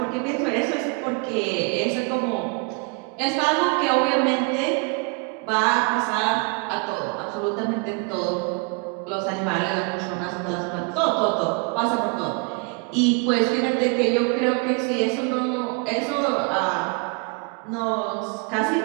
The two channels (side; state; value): left; quieter; 34.1 dB